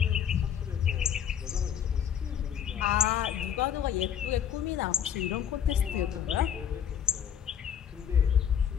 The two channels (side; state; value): right; quieter; 8.8 dB